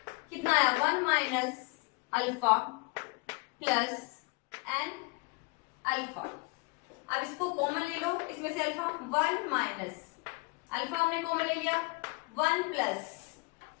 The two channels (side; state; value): right; quieter; 28.6 dB